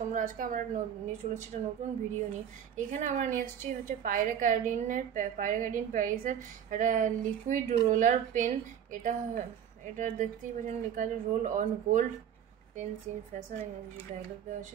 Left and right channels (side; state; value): left; quieter; 9.0 dB